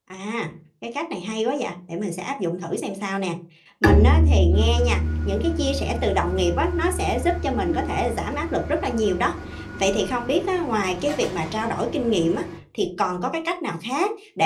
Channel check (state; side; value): identical; both; correlation 1.00